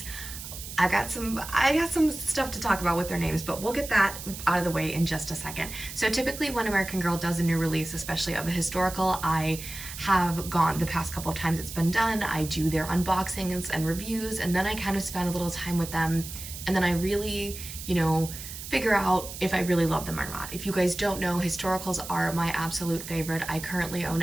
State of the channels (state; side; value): noise; right; hiss, 10 dB below the sound